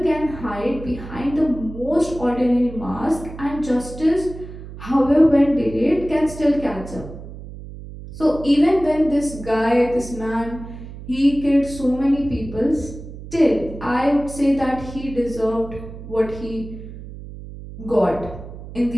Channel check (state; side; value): noise; right; hum, 13 dB below the sound